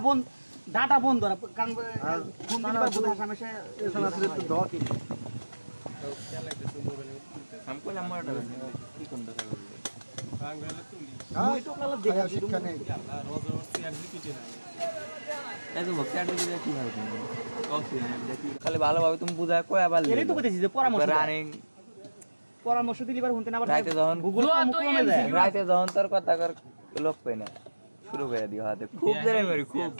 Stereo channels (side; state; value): both; inverted; correlation -1.00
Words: ডাটা বন্ধ কারণ ফোন দিবার বলে হামেশা এছাড়া আসলে একটু দাও কি हम को लम्बा কি কোন কথা বলবো ওই তো কালা দেখা শিক্ষা নেই এই তো বক্সার দিকে কি ভালো কফি দেখি খালি ভালোভাবে তুমি বুঝায় কয় আবার এরই তো কইতেছি যে পরামর্শ দিলিবার হুনতে না আবার রাইতে যখন গুগল কমে যায় রাইতে যখন তোর কথা কর লোক পাই না শুরু করে দিও হাতে খুব জোরে মারি খুব